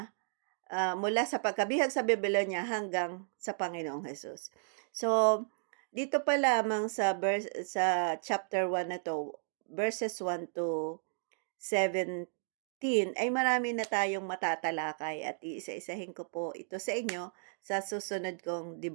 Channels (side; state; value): left; silent; digital silence